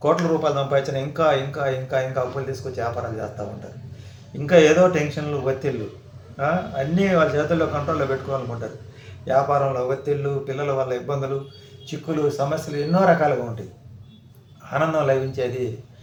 కోట్ల రూపాయలు సంపాదించిన ఇంకా ఇంకా ఇంకా ఇంకా అప్పులు తీసుకొచ్చి వ్యాపారాలు చేస్తూ ఉంటారు. ఇంకా ఏదో టెన్షన్లు, ఒత్తిళ్ళు అన్నీ వాళ్ళ చేతుల్లో కంట్రోల్లో పెట్టుకోవాలనుకుంటారు. వ్యాపారంలో ఒత్తిళ్ళు, పిల్లల వల్ల ఇబ్బందులు, చిక్కులు, సమస్యలు ఎన్నో రకాలుగా ఉంటాయి. ఆనందం లభించేది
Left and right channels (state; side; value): identical; both; correlation 1.00